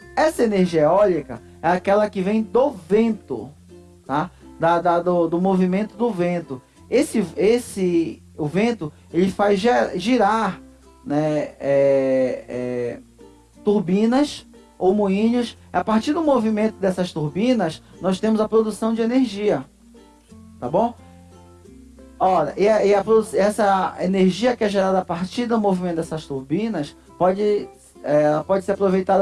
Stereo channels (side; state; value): both; identical; correlation 1.00